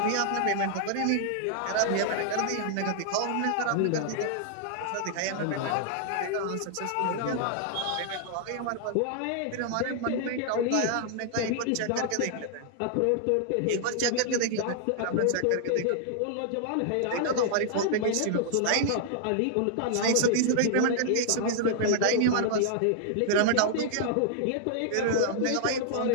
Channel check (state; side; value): different; both; correlation -0.01